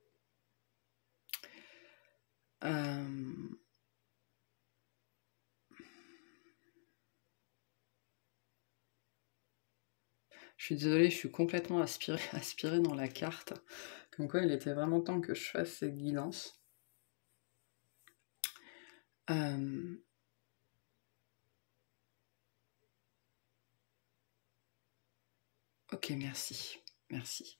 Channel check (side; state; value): right; silent; digital silence